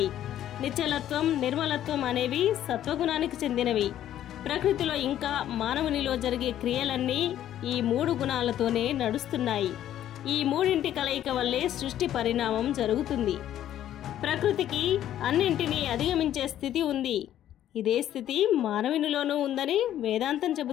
నిశ్చలత్వం, నిర్మలత్వం అనేవి సత్వగుణానికి చెందినవి. ప్రకృతిలో ఇంకా మానవునిలో జరిగే క్రియలన్నీ ఈ 3 గుణాలతోనే నడుస్తున్నాయి. ఈ మూడింటి కలయిక వల్లే సృష్టి పరిణామం జరుగుతుంది. ప్రకృతికి అన్నింటినీ అధిగమించే స్థితి ఉంది. ఇదే స్థితి మానవునిలోనూ ఉందని వేదాంతం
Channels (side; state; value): right; quieter; 11.7 dB